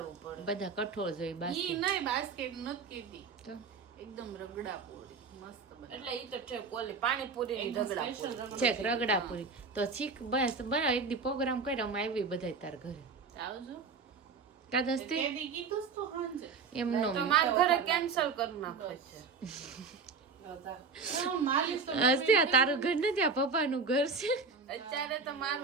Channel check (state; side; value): quieter; left; 4.9 dB